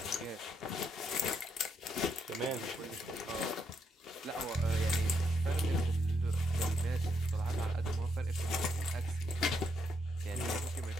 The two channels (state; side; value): normal; both; correlation 0.76